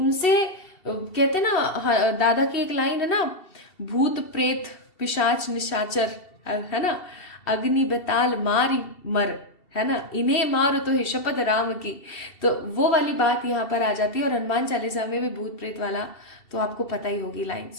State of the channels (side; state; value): right; late; 2.7 ms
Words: कहते हैं ना, दादा की एक लाइन है ना, भूत प्रेत पिशाच निशाचर, है ना, अग्नि बेताल मारी मर, है ना, इन्हें मारो तो है शपथ राम की। तो वो वाली बात यहाँ पर आ जाती है, और हनुमान चालीसा में भी भूत प्रेत वाला तो आपको पता ही होगी